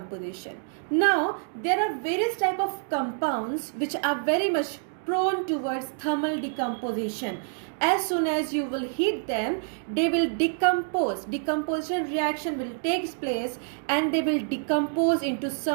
Now, there are various type of compounds which are very much prone towards thermal decomposition. As soon as you will heat them, they will decompose. Decomposition reaction will take place and they will decompose into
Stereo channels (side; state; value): left; silent; digital silence